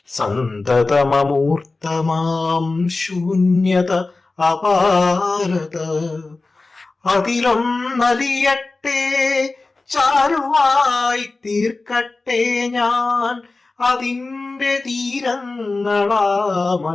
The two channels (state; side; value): quieter; right; 3.5 dB